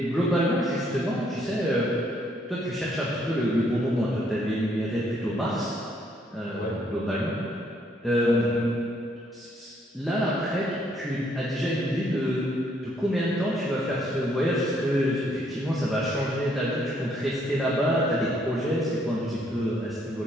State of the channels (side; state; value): both; normal; correlation 0.69